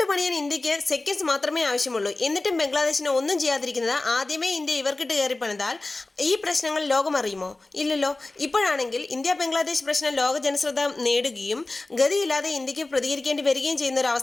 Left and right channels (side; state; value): right; quieter; 3.1 dB